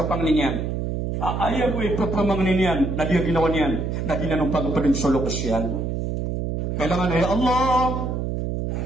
panglinyan. Ayaw ko ipapamangnin yan na di ginawa niyan na di na nung pagpapadang solo kasyan. Kailangan, ya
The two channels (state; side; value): noise; right; hum, 2 dB below the sound